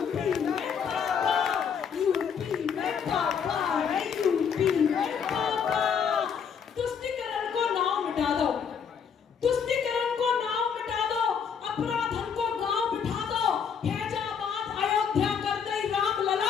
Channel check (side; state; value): right; quieter; 6.9 dB